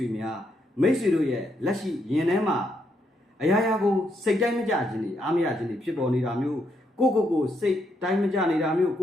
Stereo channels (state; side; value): normal; both; correlation 0.77